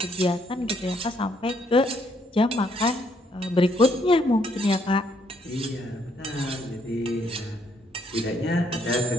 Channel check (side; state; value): both; normal; correlation 0.71